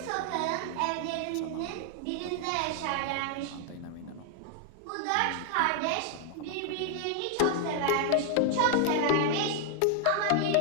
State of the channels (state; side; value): different; both; correlation 0.00